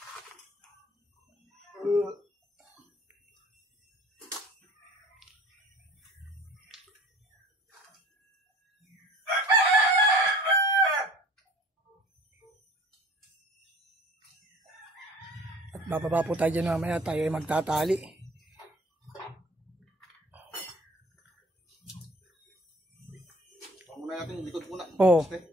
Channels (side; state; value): both; normal; correlation 0.48